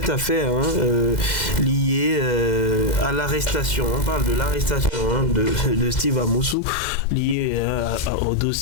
affaire liée à l'arrestation. On parle de l'arrestation de Steve Amoussou lié au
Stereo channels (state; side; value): late; right; 2.0 ms